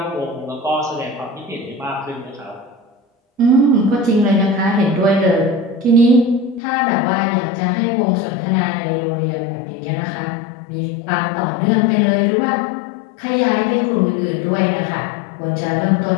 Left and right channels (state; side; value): drops out; right; at 6.6 s